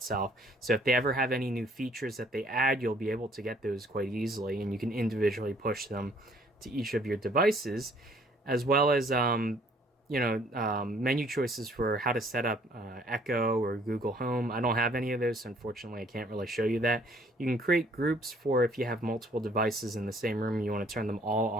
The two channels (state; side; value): normal; both; correlation 0.60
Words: So if they ever have any new features that they add, you'll be able to get those quite easily, and you can individually push them to each of your devices, as well as menu choices for how to set up Echo or Google Home. I don't have any of those, so unfortunately I can't really show you that. You can create groups for if you have multiple devices in the same room and you want to turn them all